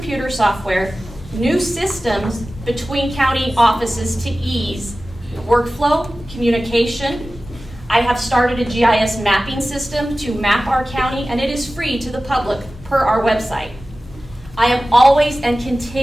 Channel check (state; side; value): normal; both; correlation 0.96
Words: software, new systems between county offices to ease workflow, communication. I have started a GIS mapping system to map our county, and it is free to the public per our website. I am always and